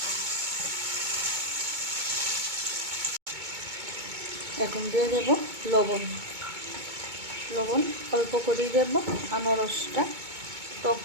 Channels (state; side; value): late; left; 2.2 ms